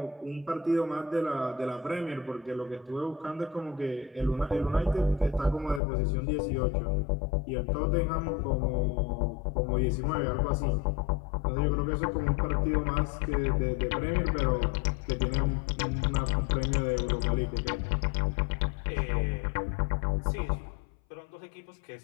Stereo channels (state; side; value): drops out; right; at 5.8 s